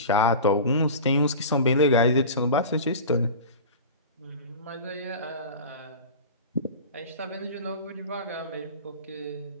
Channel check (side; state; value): both; inverted; correlation -0.33